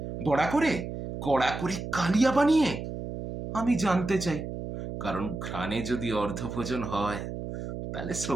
বড়া করে, কড়া করে, কালিয়া বানিয়ে? আমি জানতে চাই, কারণ ঘ্রাণে যদি অর্ধভোজন হয়, তাহলে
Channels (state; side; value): noise; right; hum, 7 dB below the sound